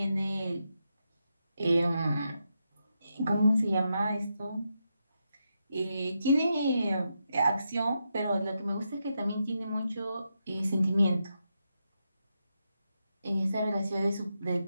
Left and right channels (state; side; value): inverted; both; correlation -0.84